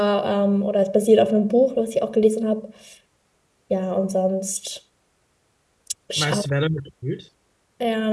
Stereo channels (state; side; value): identical; both; correlation 1.00